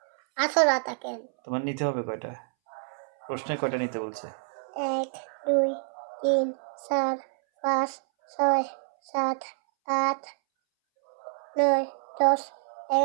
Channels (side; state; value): left; silent; 59 dB below the other